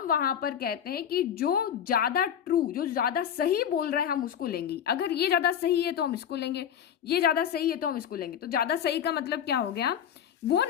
वहां पर कहते हैं कि जो ज्यादा ट्रू, जो ज्यादा सही बोल रहा है हम उसको लेंगे। अगर ये ज्यादा सही है तो हम इसको लेंगे, ये ज्यादा सही है तो हम इसको लेंगे। तो ज्यादा सही का मतलब क्या हो गया, वो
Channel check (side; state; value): right; quieter; 9.0 dB